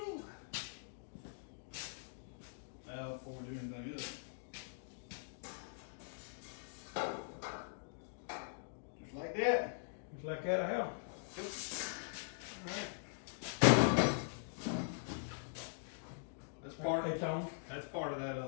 Now, before we do anything else, just like that. Just like that, how? Yep. All right. That's part. It's on. That's part of that.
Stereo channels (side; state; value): right; silent; digital silence